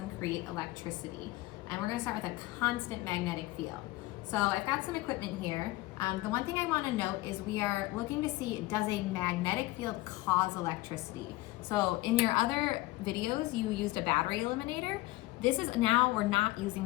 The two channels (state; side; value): quieter; right; 19.2 dB